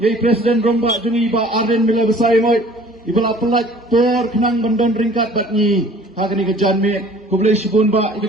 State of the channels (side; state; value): both; normal; correlation 0.50